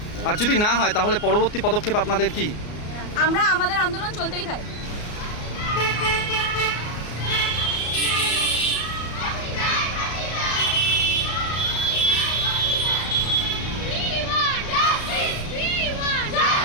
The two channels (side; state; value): right; late; 34 ms